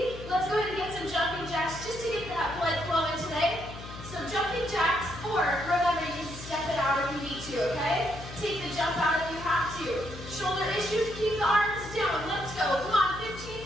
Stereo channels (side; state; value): left; noise; hum, 12 dB below the sound